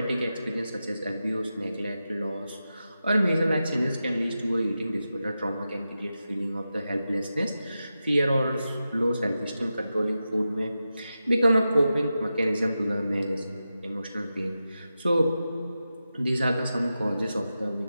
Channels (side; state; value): both; inverted; correlation -0.91